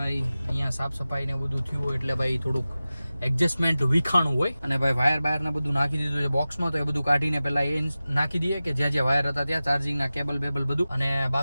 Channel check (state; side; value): inverted; both; correlation -0.96